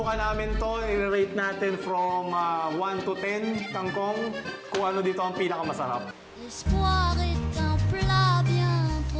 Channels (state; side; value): identical; both; correlation 1.00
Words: namin to. I-rate natin from 1 to 10 kangkong. Kung ano dito ang pinakamasarap. L'espoir est un plat bien